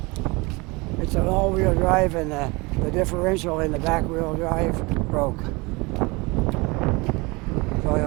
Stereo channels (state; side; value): quieter; left; 25.5 dB